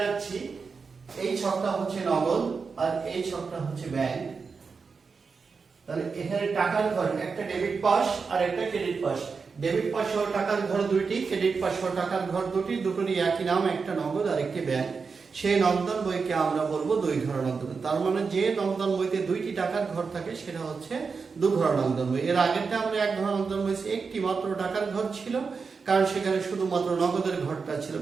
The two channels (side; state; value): left; quieter; 5.1 dB